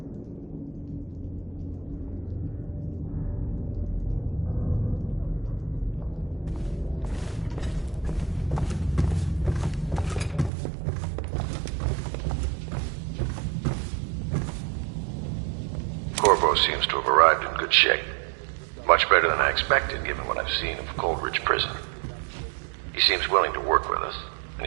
Corvo seems to have arrived in good shape. Much better than I expected, given what I've seen of Coldridge Prison. He seems willing to work with us, and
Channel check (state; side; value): drops out; left; at 10.5 s